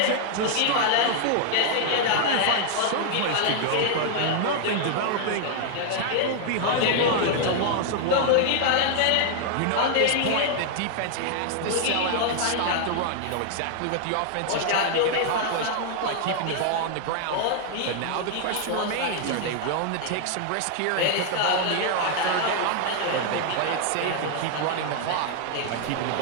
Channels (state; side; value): different; both; correlation 0.00